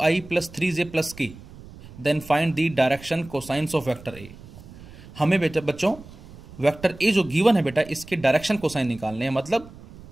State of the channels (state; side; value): noise; right; rumble, 18 dB below the sound